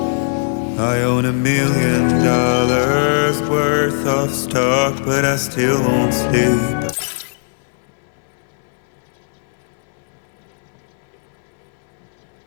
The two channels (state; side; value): silent; right; digital silence